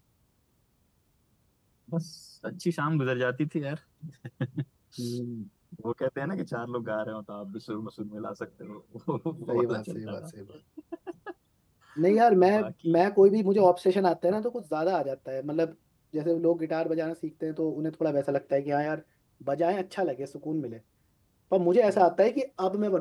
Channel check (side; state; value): both; identical; correlation 1.00